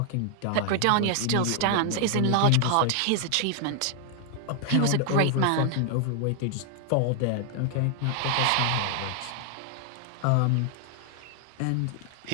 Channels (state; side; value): different; both; correlation 0.00